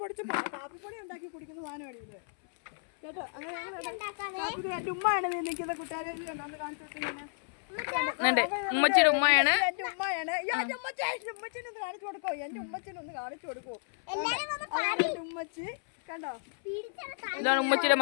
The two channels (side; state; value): right; silent; 56 dB below the other